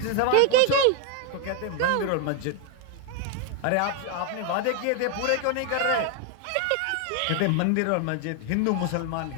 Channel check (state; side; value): different; both; correlation 0.01